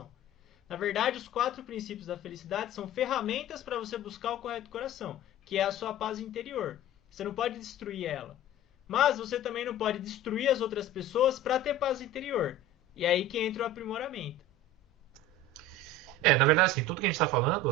Na verdade, os 4 princípios da felicidade são ferramentas para você buscar o correto coração, que é a sua paz interior. Você não pode destruir ela. Mas você também não pode destruir as outras pessoas para ter paz interior. E é aí que entra o aprimoramento. Na verdade, assim, tudo que a gente está falando,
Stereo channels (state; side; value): normal; both; correlation 0.36